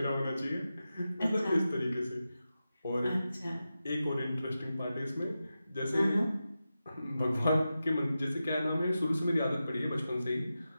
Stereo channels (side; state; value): both; inverted; correlation -0.92